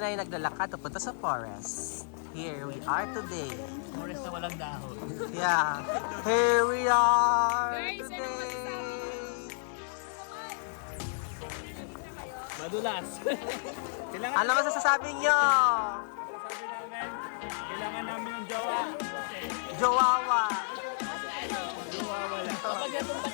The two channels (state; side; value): silent; right; digital silence